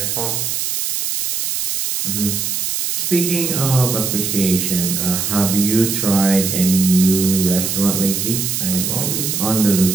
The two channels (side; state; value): right; noise; hiss, 1 dB below the sound